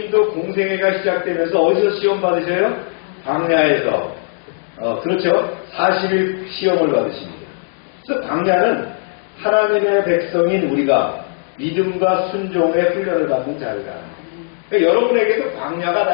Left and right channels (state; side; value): silent; right; digital silence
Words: 공생애가 시작되면서 어디서 시험 받으셔요? 광야에서. 그렇죠. 40일 시험을 받으십니다. 그래서 광야는 하나님의 백성인 우리가 믿음과 순종의 훈련을 받는 자리다. 그러니까 여러분에게도 광야가 다